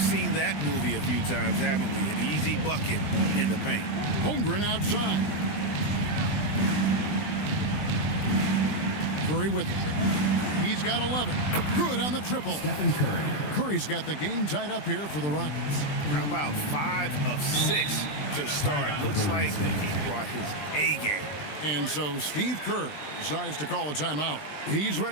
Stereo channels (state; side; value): late; right; 20 ms